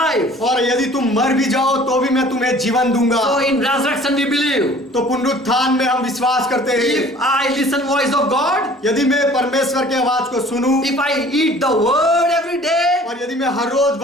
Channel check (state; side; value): normal; both; correlation 0.50